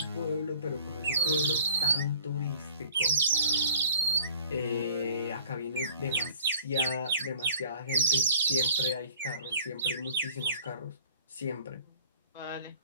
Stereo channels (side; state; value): both; inverted; correlation -0.51